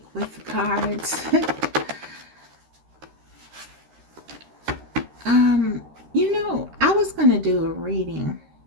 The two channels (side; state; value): left; late; 13 ms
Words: with the cards. You know, I was going to do a reading